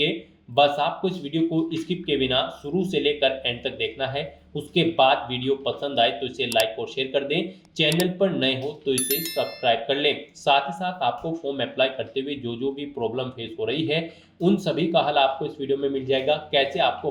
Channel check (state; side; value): identical; both; correlation 1.00